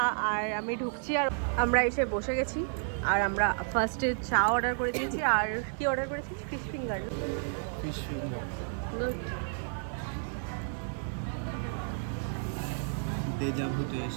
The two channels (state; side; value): silent; left; 57 dB below the other